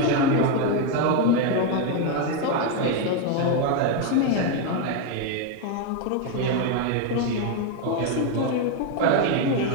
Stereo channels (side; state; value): both; different; correlation 0.02